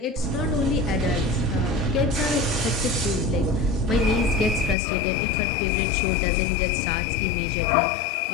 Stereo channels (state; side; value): drops out; right; at 4.8 s